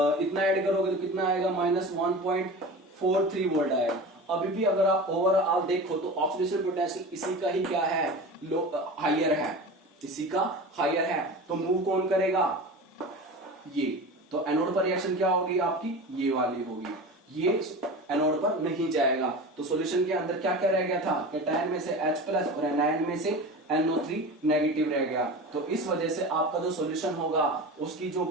ऐड करोगे तो कितना आएगा, -1.43 वोल्ट आएगा। अभी भी अगर आप ओवरऑल देखो तो ऑक्सीडेशन पोटेंशियल इसी का ही क्या है, हायर है, इसी का हायर है। तो मूव कौन करेगा, ये। तो एनोड पर रिएक्शन क्या होगी आपकी, ये वाली होगी, ये एनोड पर नहीं जाएगा। तो सॉल्यूशन के अंदर क्या क्या रह गया था, कैटायन में से H+ और एनायन में से NO3 नेगेटिव रह गया। तो इस वजह से आपका जो सॉल्यूशन होगा उसकी जो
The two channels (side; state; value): both; normal; correlation 0.32